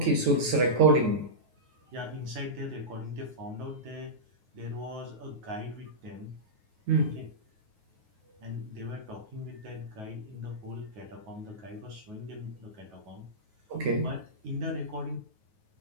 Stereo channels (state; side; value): late; left; 9.4 ms